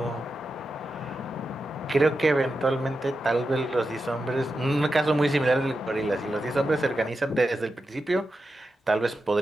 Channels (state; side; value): normal; both; correlation 0.90